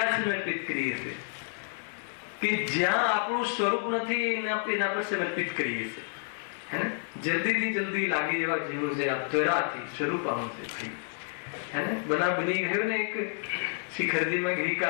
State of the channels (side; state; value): right; silent; 58 dB below the other